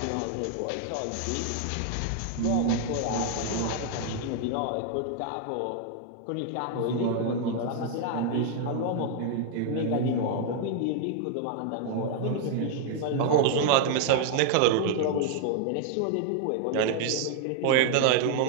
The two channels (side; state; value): both; different; correlation 0.00